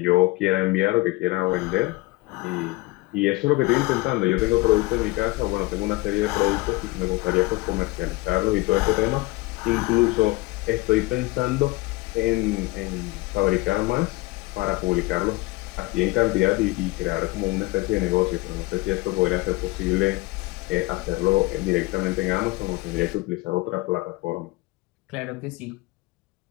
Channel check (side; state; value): right; quieter; 22.0 dB